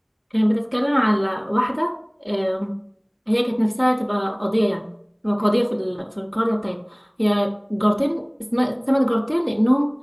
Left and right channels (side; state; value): both; identical; correlation 1.00